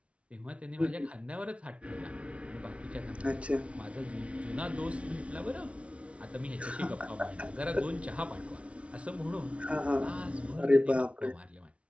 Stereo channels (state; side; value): late; left; 0.062 ms